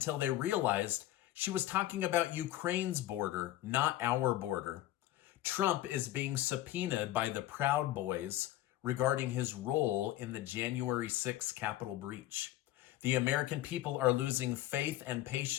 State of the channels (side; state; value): right; quieter; 14.6 dB